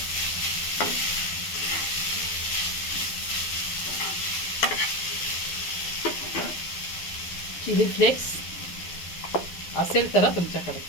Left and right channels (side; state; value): right; late; 12 ms